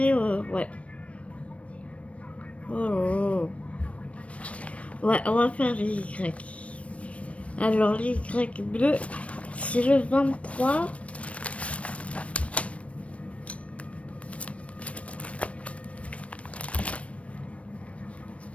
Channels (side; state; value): right; late; 0.063 ms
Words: ouais. Oh. Ouais, on va faire les Y. Alors, les Y bleus, c'est le 23.